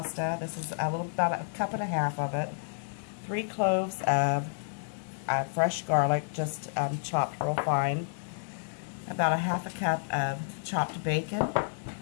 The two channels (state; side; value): silent; right; digital silence